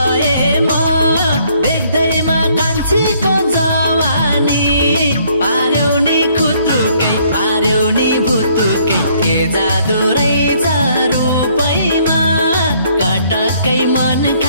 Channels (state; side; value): inverted; both; correlation -0.65